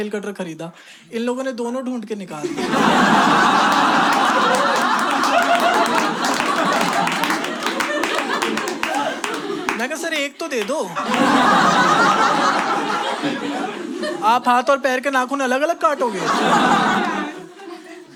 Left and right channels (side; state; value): both; identical; correlation 1.00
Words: कटर खरीदा, इन लोगों ने दोनों ढूंढ के निकाल दिया। मैं कहा सर एक तो दे दो। आप हाथ और पैर के नाखून अलग अलग काटोगे?